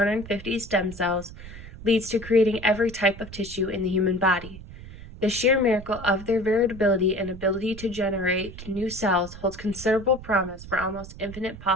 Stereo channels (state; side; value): noise; right; rumble, 14 dB below the sound